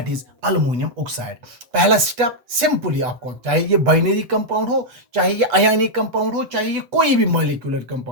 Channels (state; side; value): late; left; 8.2 ms